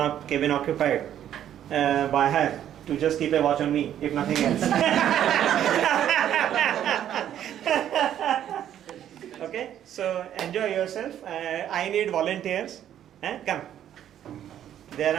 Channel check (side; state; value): left; quieter; 10.7 dB